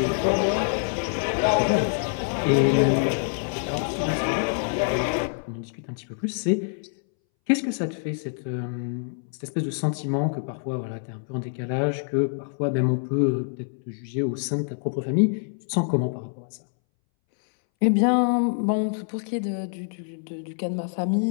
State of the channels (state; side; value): silent; right; 61 dB below the other